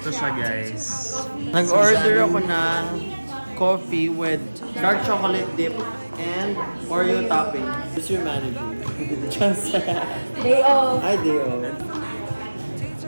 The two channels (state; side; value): inverted; both; correlation -1.00